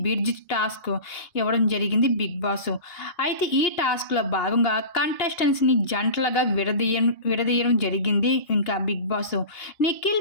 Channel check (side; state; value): right; late; 2.8 ms